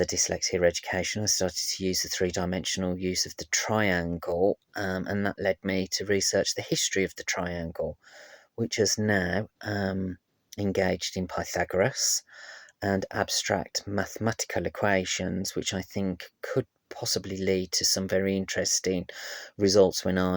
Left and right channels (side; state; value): both; identical; correlation 1.00